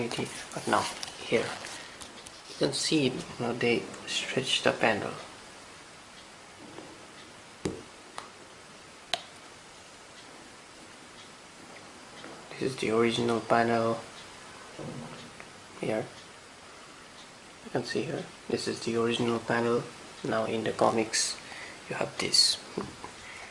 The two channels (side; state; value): both; identical; correlation 1.00